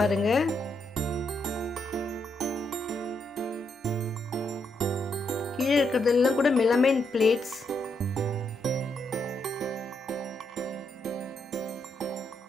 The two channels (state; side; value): normal; both; correlation 0.78